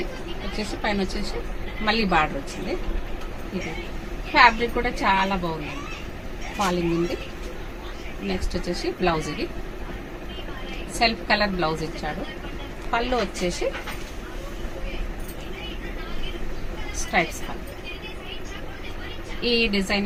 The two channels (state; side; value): identical; both; correlation 1.00